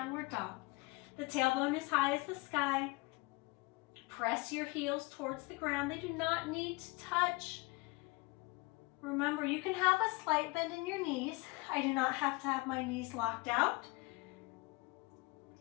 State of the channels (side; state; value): right; quieter; 25.6 dB